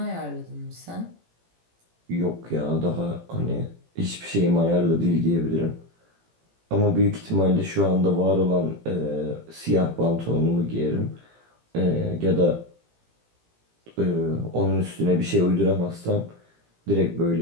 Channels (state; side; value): late; left; 18 ms